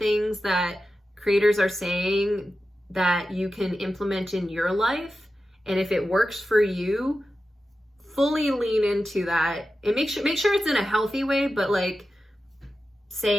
that creators are saying that you can implement in your life. And if it works for you, fully lean into that and make sure it's in a healthy way. But like,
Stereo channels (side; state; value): both; normal; correlation 0.92